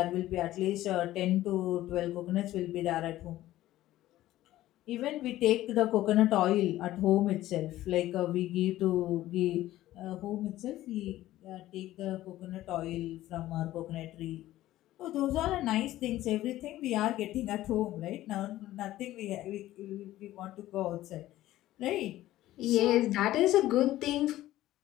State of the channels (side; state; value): right; quieter; 15.0 dB